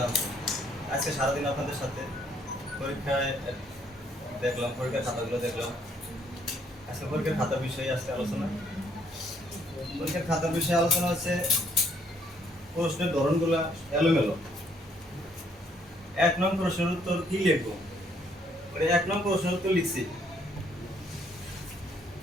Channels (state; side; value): normal; both; correlation 0.67